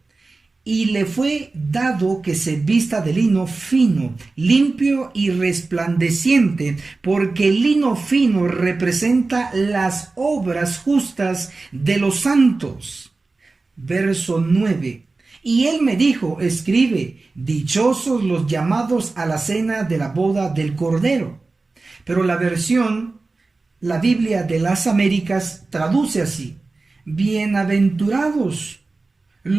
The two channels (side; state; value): left; quieter; 3.6 dB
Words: Y le fue dado que se vista de lino fino, limpio y resplandeciente, porque el lino fino representa las obras justas de los santos. Verso 9. Y él me dijo: escribe, dichosos los llamados a la cena de la boda del Cordero. Pero la Biblia de las Américas traduce así: bienaventurados